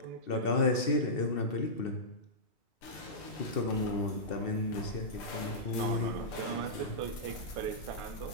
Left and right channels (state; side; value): late; right; 2.7 ms